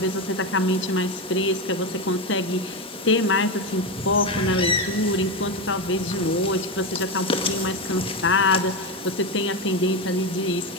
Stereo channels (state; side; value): normal; both; correlation 0.14